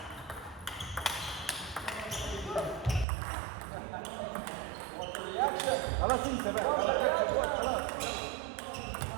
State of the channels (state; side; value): drops out; left; at 3.1 s